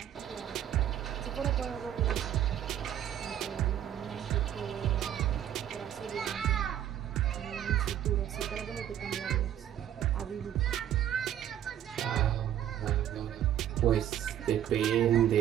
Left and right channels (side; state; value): left; quieter; 10.9 dB